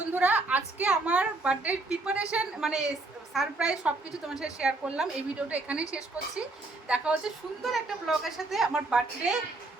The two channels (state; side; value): quieter; left; 3.2 dB